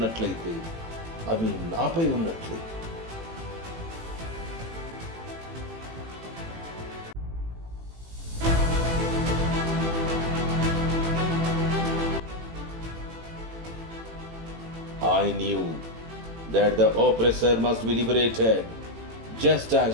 అవి నాపై ఉన్నట్లే. I knew that the oppressor must be liberated just as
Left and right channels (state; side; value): late; left; 18 ms